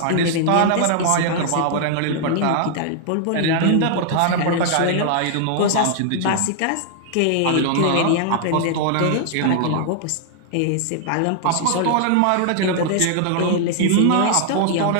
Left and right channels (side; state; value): both; different; correlation 0.00